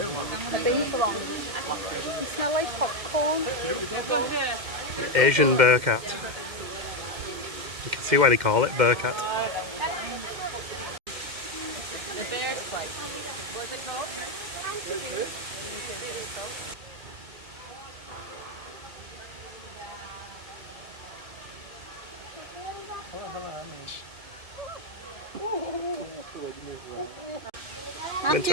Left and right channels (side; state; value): left; late; 2.1 ms